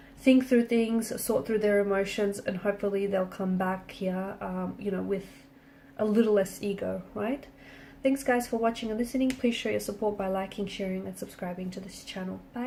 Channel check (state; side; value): identical; both; correlation 1.00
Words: think through things, sort through their emotions, and hopefully they'll come back here, with a little less ego, right? Thanks guys for watching and listening. Please show your support by liking, sharing, and subscribing to this channel.